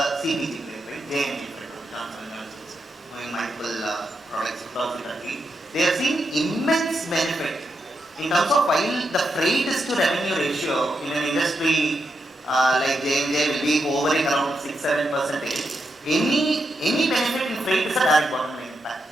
CPG brand, right? JNG, doing multiple products across the country. They have seen immense benefit in terms of while the freight is to revenue ratio in an industry like J&J will be hovering around 6-7%. Any benefit in freight is a direct bottom line impact.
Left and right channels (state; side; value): normal; both; correlation 0.84